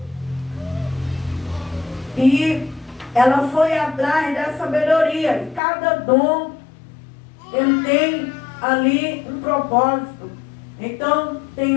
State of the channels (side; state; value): right; drops out; at 5.6 s